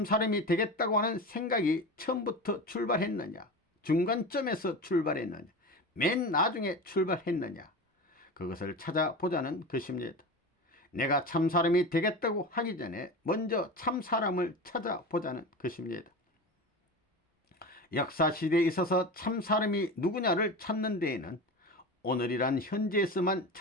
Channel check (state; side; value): normal; both; correlation 0.28